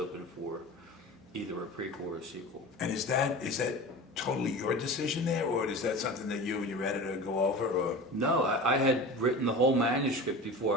for either a prequel or a sequel. And is that totally your decision there, or is that something that you and your editor go over, or? No, I had written the whole manuscript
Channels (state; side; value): normal; both; correlation 0.33